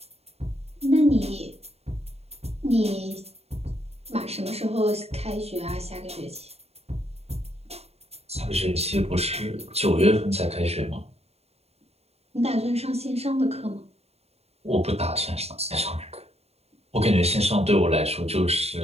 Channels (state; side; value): late; left; 0.30 ms